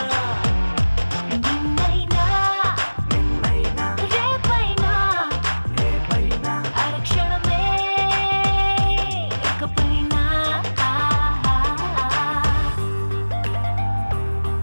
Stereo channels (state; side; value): inverted; both; correlation -1.00